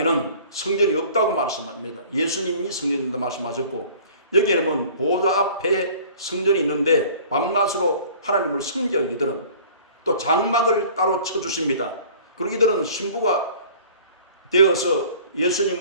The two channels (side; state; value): both; inverted; correlation -0.48